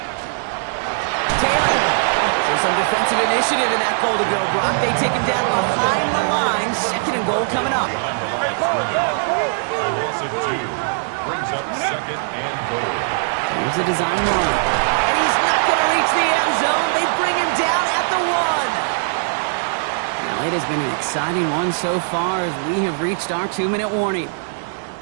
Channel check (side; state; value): left; silent; digital silence